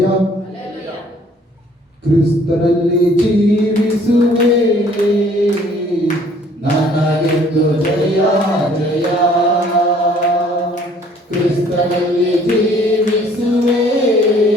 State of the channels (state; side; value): normal; both; correlation 0.58